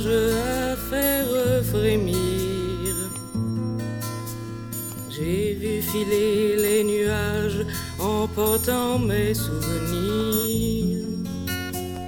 à faire frémir. J'ai vu filer les nuages emportant mes souvenirs.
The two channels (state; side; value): identical; both; correlation 1.00